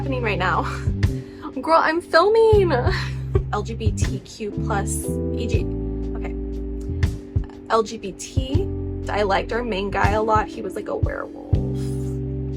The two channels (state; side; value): identical; both; correlation 1.00